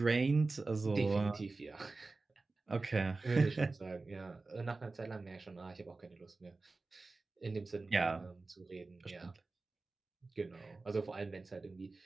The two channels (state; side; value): quieter; left; 3.6 dB